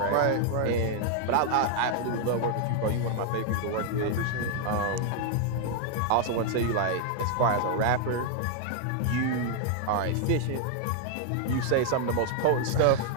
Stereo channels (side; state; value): both; different; correlation 0.00